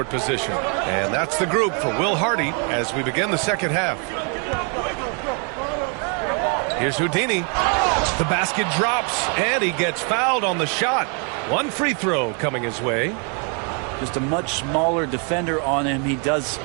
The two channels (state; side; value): quieter; left; 37.4 dB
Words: position. And that's the group for Will Hardy as we begin the second half. Here's Houdini. The basket drops, and he gets fouled on the shot. One free throw coming his way. Just a much smaller defender on him. He does